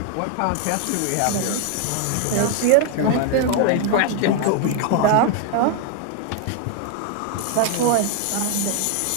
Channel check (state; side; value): different; both; correlation 0.00